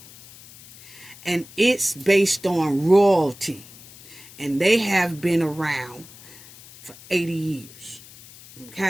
And it's based on royalty. And they have been around for 80 years.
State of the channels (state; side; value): noise; left; hiss, 20 dB below the sound